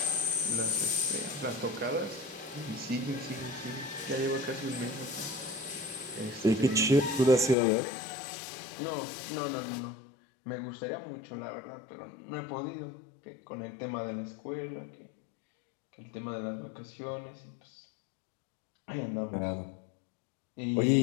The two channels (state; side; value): drops out; right; at 7.6 s